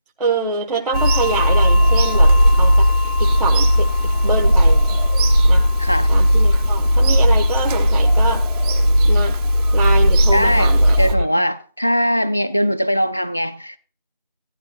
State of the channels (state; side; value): inverted; both; correlation -0.89